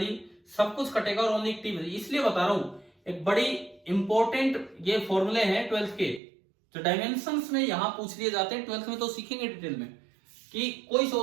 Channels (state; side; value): drops out; left; at 6.2 s